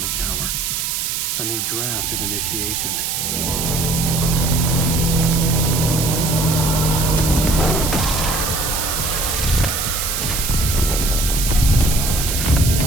Tower. A new draft of Initiation.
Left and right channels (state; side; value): noise; right; hiss, 1 dB below the sound